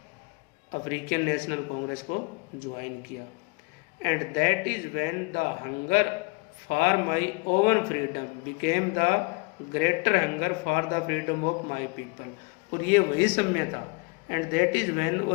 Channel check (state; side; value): quieter; right; 29.3 dB